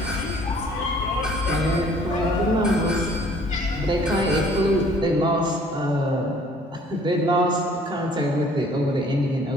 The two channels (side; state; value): both; normal; correlation 0.56